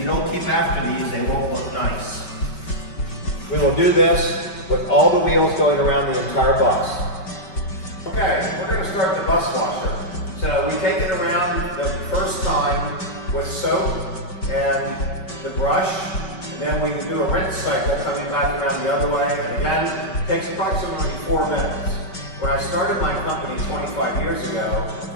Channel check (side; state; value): right; late; 5.2 ms